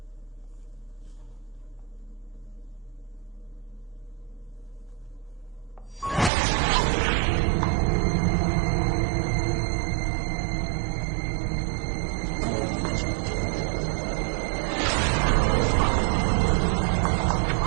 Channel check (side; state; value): left; drops out; at 6.3 s